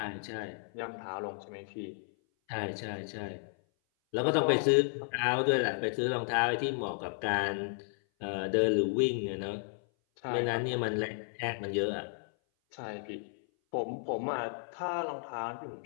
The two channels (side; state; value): right; silent; 56 dB below the other